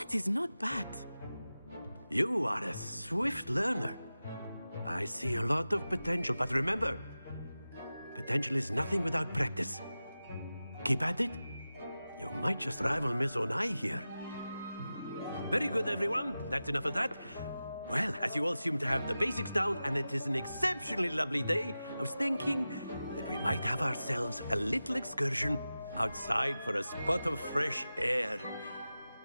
is not bad. You are a swift learner. I see a lot of potential, but remember, potential is nothing without practice. Keep at it. You might just rival Miss Onai here. Very good, everyone. That's enough of that. Well, as you all seem to have the basics down, and it is an exceptionally lovely day, I was thinking that we might have ourselves a little excursion outside for a spot of fresh air.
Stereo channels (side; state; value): both; inverted; correlation -0.94